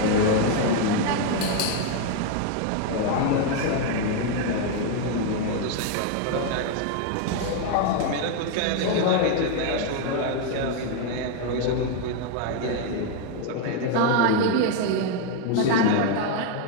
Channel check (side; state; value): both; different; correlation 0.01